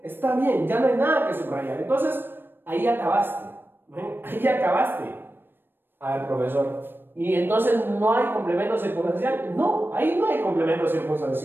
Está bien, ya no hay nada que subrayar. Entonces, ahí acabaste. Ahí acabaste. A ver, profesor. ¿Y entonces no hay complemento circunstancial? No, ahí no hay complemento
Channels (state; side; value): late; left; 0.098 ms